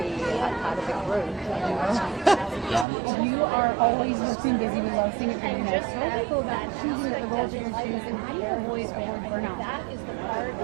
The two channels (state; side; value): drops out; left; at 2.9 s